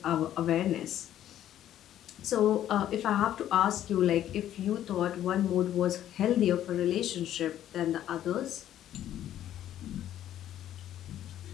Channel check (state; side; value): quieter; right; 11.7 dB